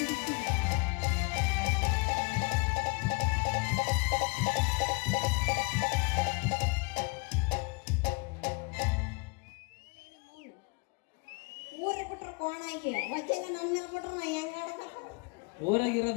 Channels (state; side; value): quieter; right; 31.0 dB